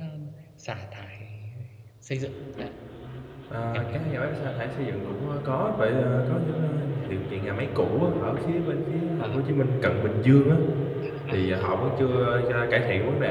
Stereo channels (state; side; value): identical; both; correlation 1.00